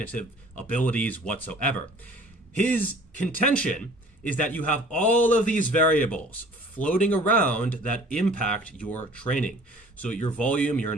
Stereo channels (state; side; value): normal; both; correlation 0.50